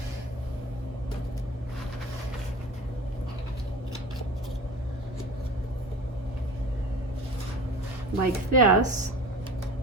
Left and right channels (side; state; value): both; normal; correlation 0.38